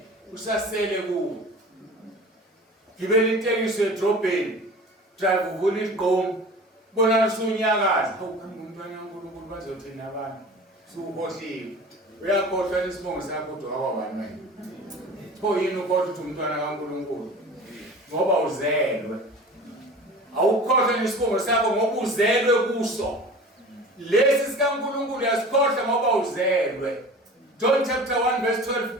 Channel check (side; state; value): both; normal; correlation 0.39